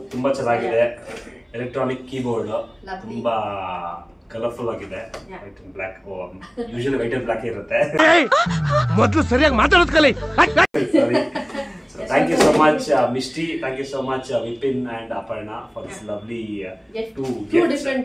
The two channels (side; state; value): both; identical; correlation 1.00